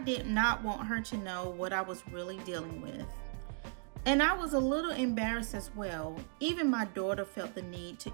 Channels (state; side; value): silent; left; 54 dB below the other